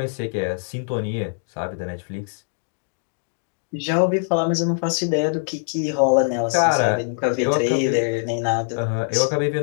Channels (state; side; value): silent; right; digital silence